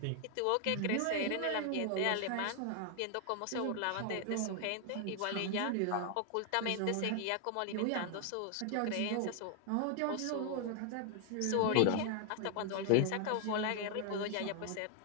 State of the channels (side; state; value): both; different; correlation 0.00